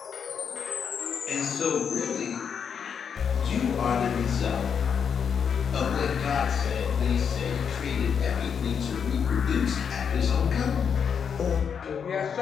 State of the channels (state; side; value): quieter; right; 7.1 dB